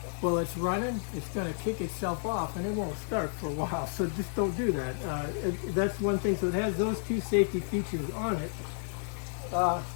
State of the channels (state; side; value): silent; right; 56 dB below the other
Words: while it's running, it's going to kick itself off, and it won't start for a while, so just don't do that. That's one thing. So it has those 2 safety features on it.